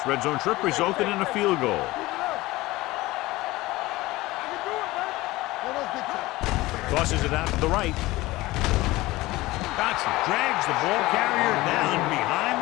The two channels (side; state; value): right; quieter; 19.3 dB